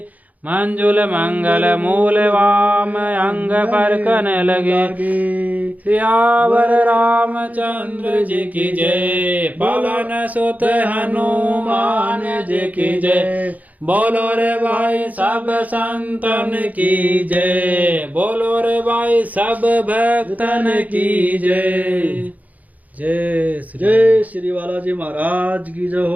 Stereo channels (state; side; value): late; left; 0.077 ms